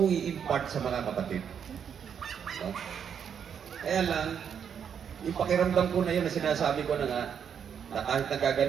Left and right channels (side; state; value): left; quieter; 7.8 dB